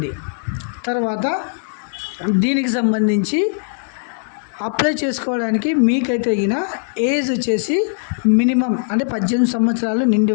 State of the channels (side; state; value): right; silent; 66 dB below the other